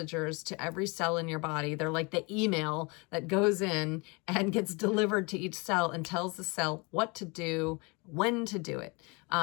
to every cell in your body. They're like the email that goes in and gets delivered to each cell and tells the cell what to do, when to do it.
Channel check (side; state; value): right; quieter; 29.0 dB